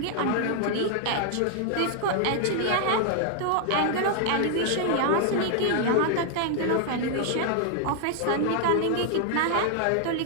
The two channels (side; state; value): both; different; correlation 0.00